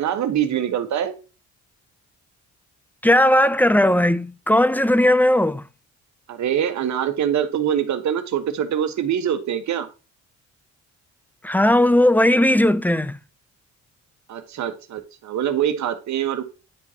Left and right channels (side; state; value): both; normal; correlation 0.65